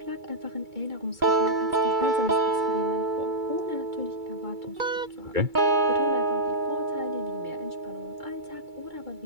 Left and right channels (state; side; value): late; left; 2.3 ms